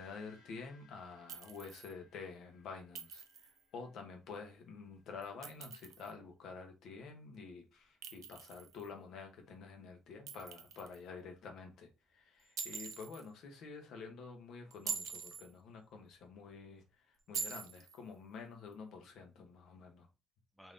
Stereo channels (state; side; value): normal; both; correlation 0.54